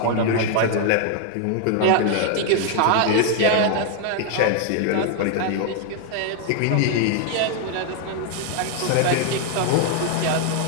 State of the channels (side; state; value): both; different; correlation 0.00